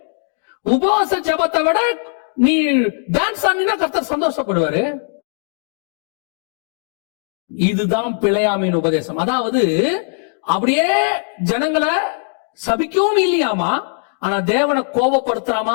உபவாச ஜபத்தை விட நீ டான்ஸ் ஆடினா கர்த்தர் சந்தோஷப்படுவாரு. இதுதான் பிலேயாமின் உபதேசம். அதாவது அப்படியே ஜனங்களை சபிக்கவும் இல்லையாமா, ஆனா தேவனை கோபப்படுத்துற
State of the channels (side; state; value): right; silent; digital silence